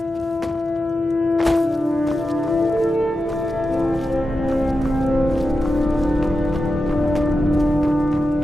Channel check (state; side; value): normal; both; correlation 0.90